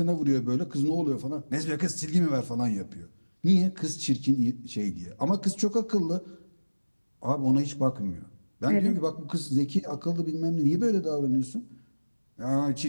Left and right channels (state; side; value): inverted; both; correlation -1.00